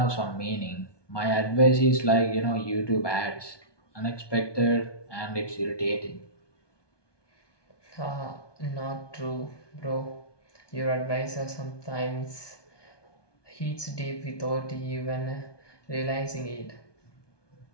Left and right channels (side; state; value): right; late; 1.2 ms